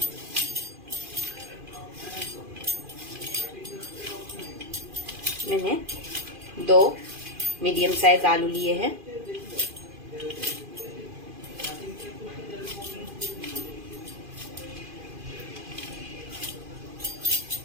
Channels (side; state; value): left; late; 2.5 ms